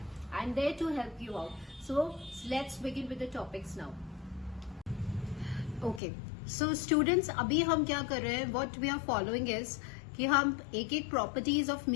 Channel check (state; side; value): drops out; right; at 6.0 s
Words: I'm there to help you out. So let's begin with the topics now. Okay, so students, अभी हम क्या कर रहे हैं, what we are following is कि हम एक properties of